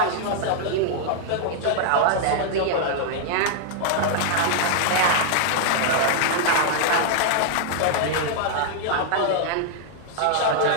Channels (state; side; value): different; both; correlation -0.01